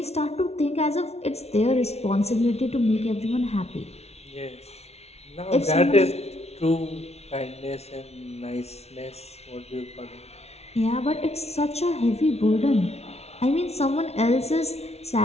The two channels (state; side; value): late; right; 0.31 ms